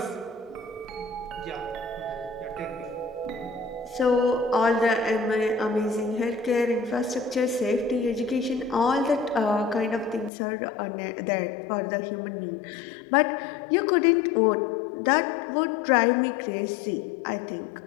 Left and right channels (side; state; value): right; drops out; at 10.3 s